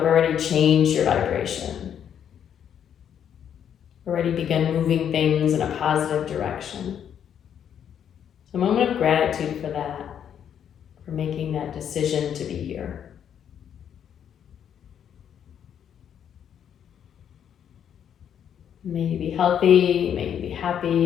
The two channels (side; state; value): right; quieter; 8.9 dB